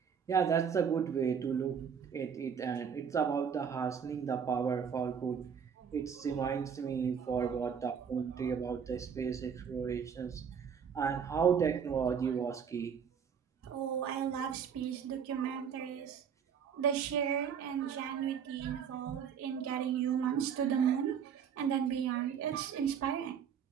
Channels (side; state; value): left; quieter; 7.3 dB